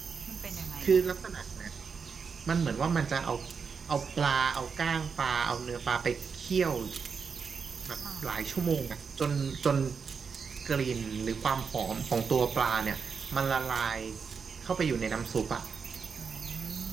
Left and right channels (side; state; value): left; quieter; 5.8 dB